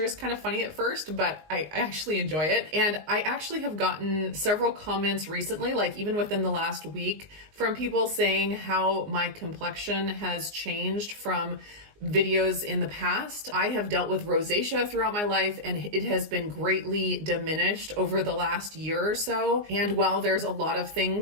is kind of funny at first, but I actually enjoy it. And I actually have gotten several comments recently, like even within the last week, from people saying how my complexion has changed from videos in the past. I have dealt with rosacea throughout my life, and it has been greatly diminished over the last year or so. And while there's a lot of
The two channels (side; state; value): left; late; 19 ms